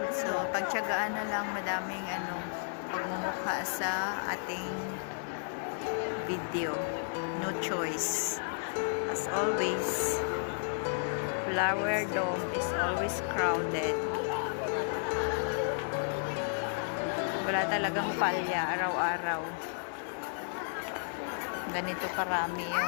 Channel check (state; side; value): silent; right; digital silence